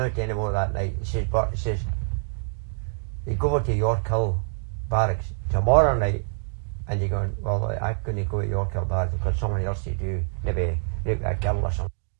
take any more that night. He says, you go over to York Hill Barracks tomorrow night, and you're going, well, I couldn't go to York Hill Barracks because someone else to do, maybe rape a girl or something.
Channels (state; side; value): silent; left; digital silence